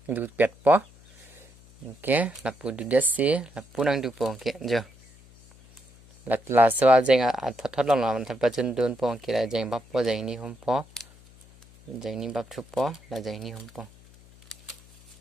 du pet po okay là pu du desi là pu nang du po okay jo là so jeng a thot long la man thap chen don po ke là jeng bap po jeng ni hom po jeng ni bap thu po là jeng ni hom po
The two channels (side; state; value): left; noise; hum, 25 dB below the sound